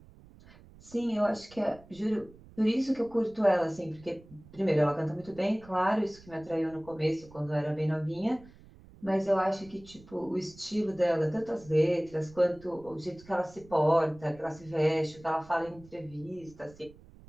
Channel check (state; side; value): noise; right; rumble, 22 dB below the sound